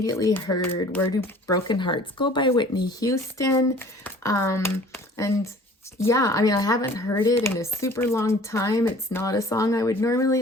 heard Where Do Broken Hearts Go by Whitney Houston. And yeah, I mean, I haven't heard it in a super long time. It's not a song I would normally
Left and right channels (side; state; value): both; normal; correlation 0.49